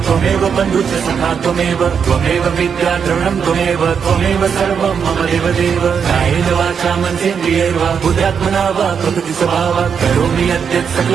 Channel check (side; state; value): left; quieter; 6.9 dB